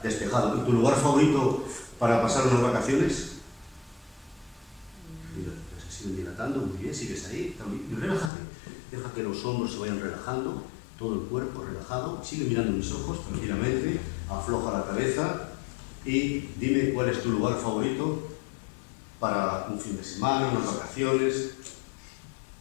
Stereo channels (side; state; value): right; drops out; at 8.3 s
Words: Despejado. ¿Y tu lugar favorito para pasar unas vacaciones? Mira, se siguen dilatando, muy bien, sigues ahí. Y relájate. Deja que los hombros se vayan relajando, todo el cuerpo relajado. Sigue mirando mis ojos tranquilamente, afloja la cabeza y dime cuál es tu lugar favorito para un fin de semana, unas vacaciones.